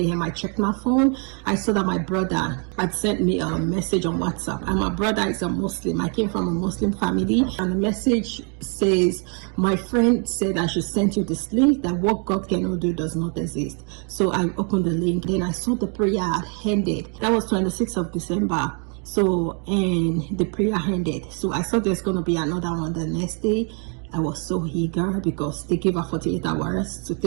I checked my phone. I saw that my brother had sent me a message on WhatsApp, and my brother is a Muslim. I came from a Muslim family, and the message says, my friend said I should send you this link, that what God cannot do does not exist. So I opened the link, then I saw the prayer had ended. That was 26th of December. So, and the prayer ended. So I thought there's going to be another one the next day. I was so eager because they gave her 48 hours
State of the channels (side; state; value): left; quieter; 38.8 dB